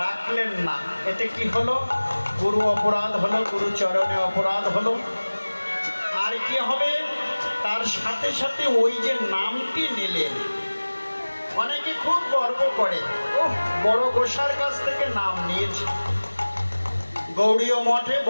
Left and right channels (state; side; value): inverted; both; correlation -1.00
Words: রাখলেন না, এতে কি হলো? গুরু অপরাধ হলো, গুরু চরণে অপরাধ হলো। আর কি হবে? তার সাথে সাথে ওই যে নামটি নিলেন, অনেকে খুব গর্ব করে, ও বড় গোসার কাছ থেকে নাম নিয়েছি, গৌড়ীয় মঠে